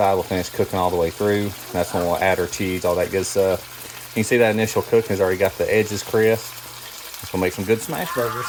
we'll finish cooking all the way through. And that's when we'll add our cheese, all that good stuff. You can see that initial cooking has already got the edges crisp. It's going to make some good smash burgers.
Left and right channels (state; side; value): identical; both; correlation 1.00